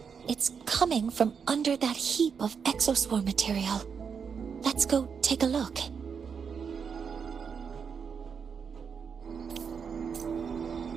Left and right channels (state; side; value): quieter; left; 6.4 dB